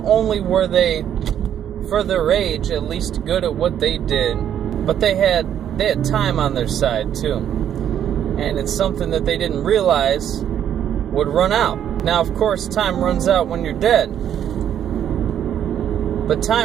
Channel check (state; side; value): quieter; left; 9.9 dB